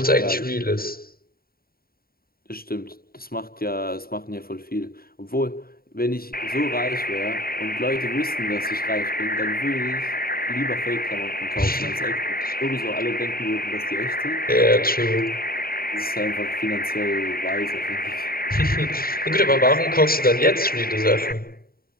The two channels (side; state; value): right; late; 0.43 ms